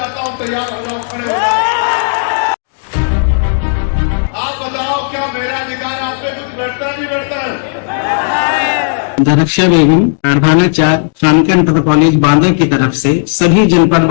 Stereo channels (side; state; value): right; silent; digital silence